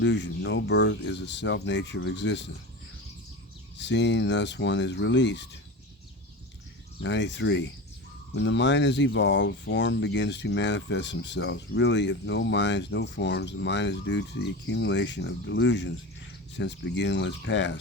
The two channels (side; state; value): both; normal; correlation 0.27